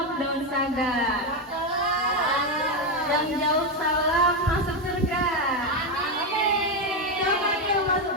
daun saga. Yang jauh salam masuk surga. Amin. Siapa nih yang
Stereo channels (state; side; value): normal; both; correlation 0.08